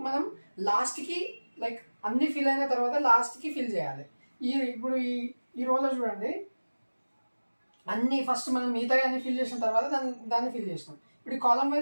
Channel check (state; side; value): inverted; both; correlation -1.00